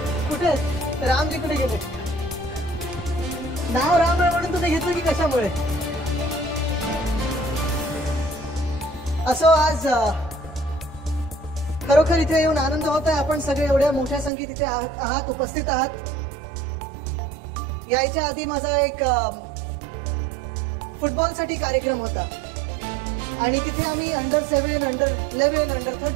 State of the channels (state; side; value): drops out; left; at 14.3 s